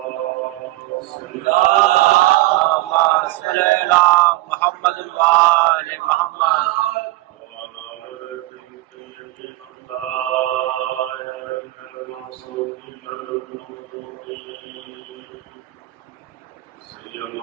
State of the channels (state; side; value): quieter; left; 18.4 dB